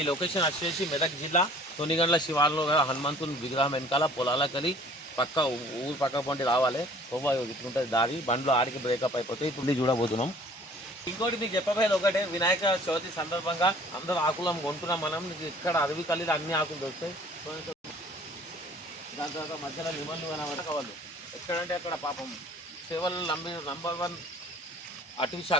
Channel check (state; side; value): normal; both; correlation 0.52